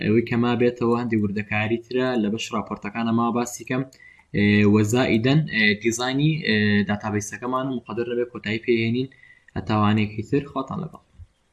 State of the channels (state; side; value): identical; both; correlation 1.00